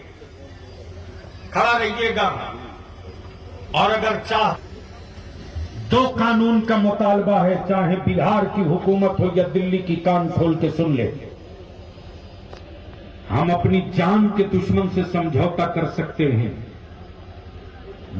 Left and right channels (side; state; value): both; identical; correlation 1.00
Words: खड़ा रहिएगा। और अगर चाह दो कानून का मुतालबा है, चाहे बिहार की हुकूमत हो या दिल्ली की, कान खोल के सुन ले। हम अपनी जान के दुश्मन से समझौता कर सकते हैं,